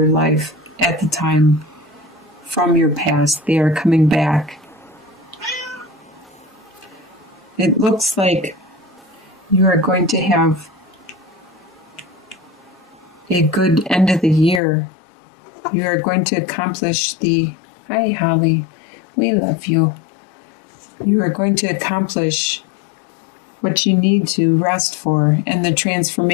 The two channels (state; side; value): drops out; right; at 14.6 s